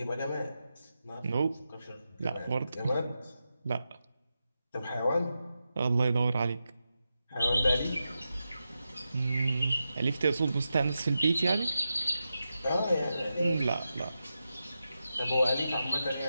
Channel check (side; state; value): both; inverted; correlation -0.89